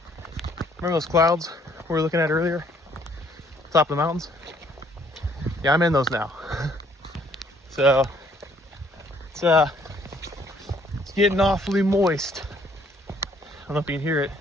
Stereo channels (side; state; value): both; normal; correlation 0.63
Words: Remember those clouds we were looking at earlier? Top of the mountains? Yeah, I'm in those now. So it's getting awfully moist. I don't know if you can hear it,